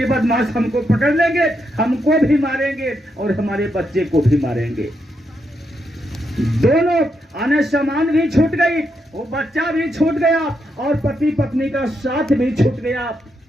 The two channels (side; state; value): both; normal; correlation 0.81